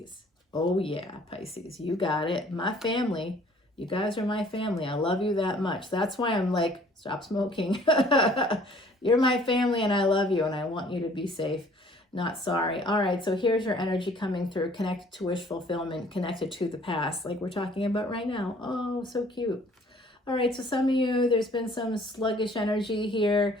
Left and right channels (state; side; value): normal; both; correlation 0.56